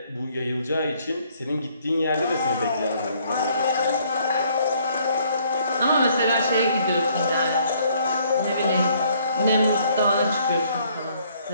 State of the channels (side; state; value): both; inverted; correlation -0.64